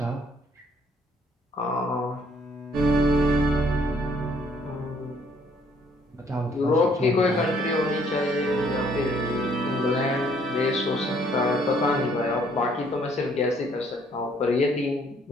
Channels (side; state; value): both; normal; correlation 0.64